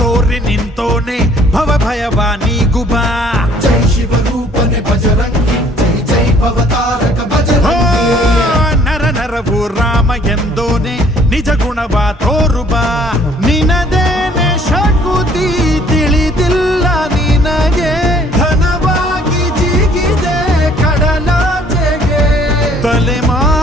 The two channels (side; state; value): both; normal; correlation 0.58